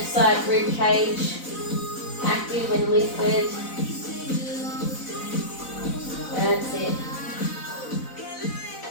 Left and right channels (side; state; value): right; late; 4.0 ms